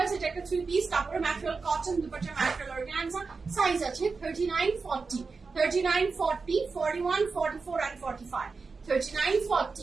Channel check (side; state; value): left; quieter; 4.5 dB